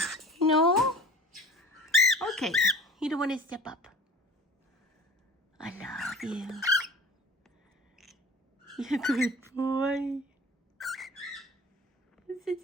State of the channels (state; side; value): normal; both; correlation 0.43